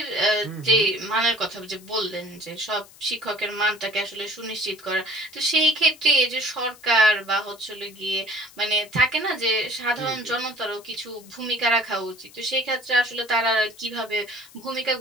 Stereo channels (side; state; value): left; noise; hiss, 23 dB below the sound